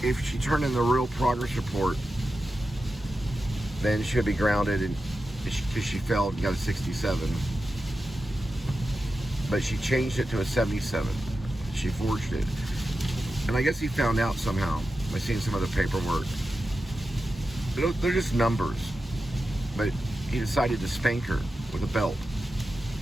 if she turned in the real progress report, then she would be grounded because she failed and got a 67. But she changed it to a 77. She forged it. And I guess he found out somehow by seeing some of the paperwork. They're just numbers. But he decided to spank her with a belt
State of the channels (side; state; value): both; normal; correlation 0.91